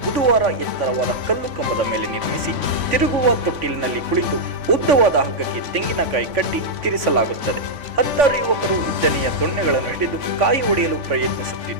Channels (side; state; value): left; late; 3.5 ms